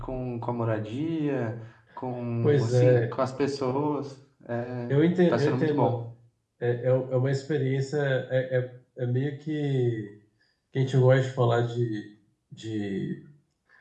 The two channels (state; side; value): identical; both; correlation 1.00